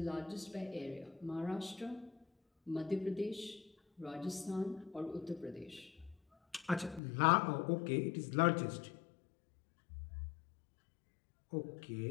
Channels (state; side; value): drops out; right; at 7.0 s